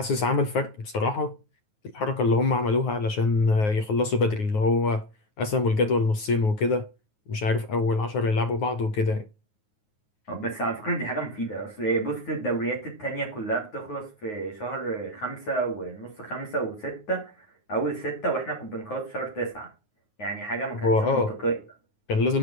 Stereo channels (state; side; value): late; right; 9.5 ms